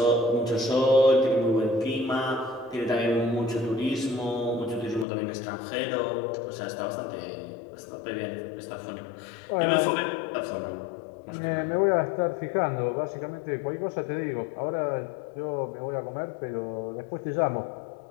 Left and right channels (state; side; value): drops out; right; at 5.1 s